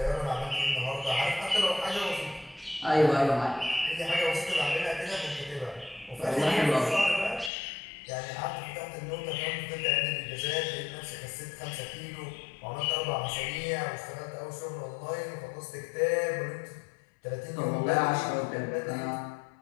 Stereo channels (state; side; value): drops out; right; at 7.5 s